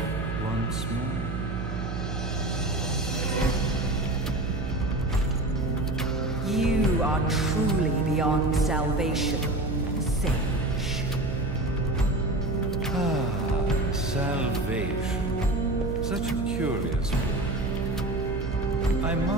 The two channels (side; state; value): right; noise; hum, 4 dB below the sound